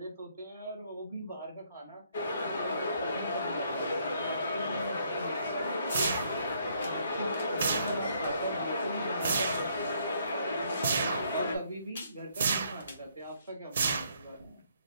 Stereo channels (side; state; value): both; inverted; correlation -0.69